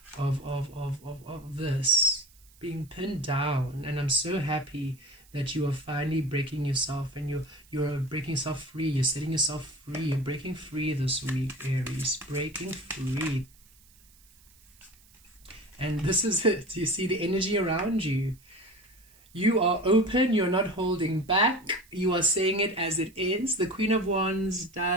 this being pinned down. And I'm so happy that you are finally breaking yourself, and you're breaking yourself free. You're setting yourself free. You're breaking free this week, Aries. Breaking free. And this is it. You see the energy around you. You are open. You're not holding back. You are saying it as it is. The Queen of Wands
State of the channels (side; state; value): right; noise; hiss, 28 dB below the sound